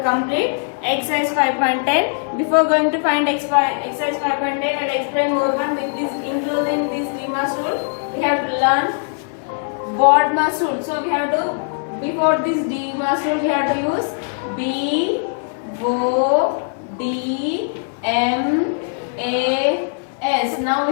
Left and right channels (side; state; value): right; silent; 57 dB below the other